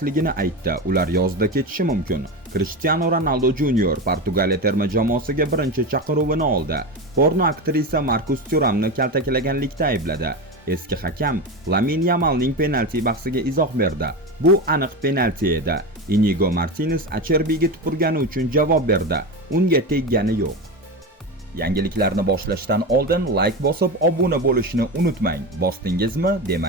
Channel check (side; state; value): both; normal; correlation 0.21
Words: aytdi. Ular yozda ketishi mumkin. Cristiano Ronaldo Junior Portugaliya terma jamoasiga birinchi chaqiruvini oldi. Porno aktrisa Marcus Thuramni kaltaklaganlikda aybladi. Eski hakam Lamine Yamalning penalti bahsiga izoh berdi. Bu aniq penalti edi. Inigo Martinez Acherbiga tupurgani uchun javob berdi. Unga teggani yo'q. Yangiliklarni boshlashdan oldin like bosib, obuna bo'lishni unutmang. Bosdingizmi?